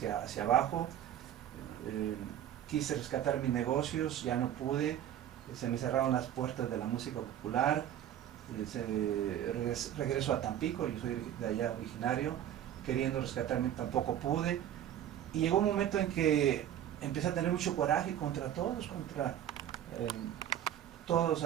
abajo, quise rescatar mis negocios, ya no pude, se me cerraron las puertas de la música popular. Regreso a Tampico, yo soy de allá originario, queriendo rescatarme tampoco pude, y llegó un momento en que empecé a tener mucho coraje contra todos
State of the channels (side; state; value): left; quieter; 11.0 dB